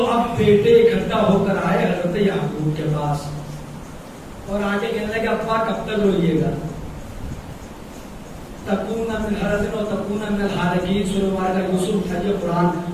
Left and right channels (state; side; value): identical; both; correlation 1.00